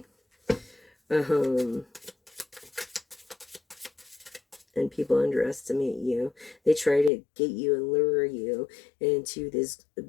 And people underestimate you. They try to get you and lure you into this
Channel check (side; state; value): right; drops out; at 7.1 s